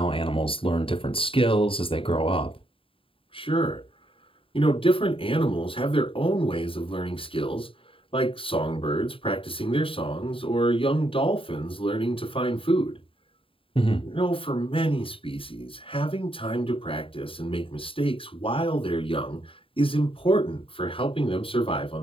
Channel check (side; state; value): right; late; 0.26 ms